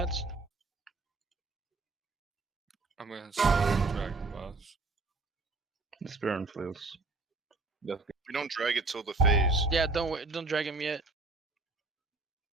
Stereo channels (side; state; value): left; quieter; 3.5 dB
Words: I'm gonna slowly drag the boss. The spear and flails. That's good. We don't drag it till the phase. Yeah, don't drag him yet.